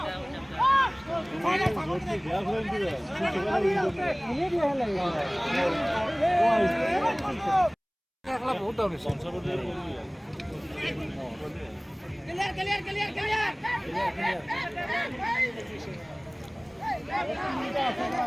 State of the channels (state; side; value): identical; both; correlation 1.00